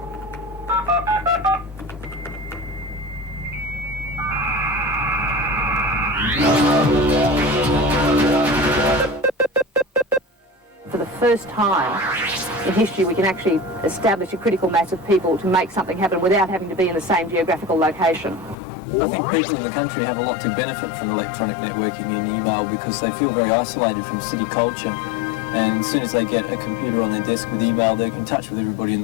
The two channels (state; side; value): drops out; right; at 18.6 s